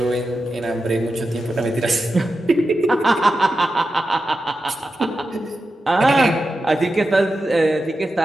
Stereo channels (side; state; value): both; normal; correlation 0.90